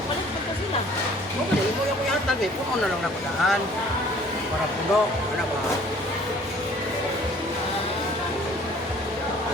pa sila. Oo, mo yung kuyatan eh. Puno na lang na padaan. Para puno. Ano ba?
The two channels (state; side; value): normal; both; correlation 0.54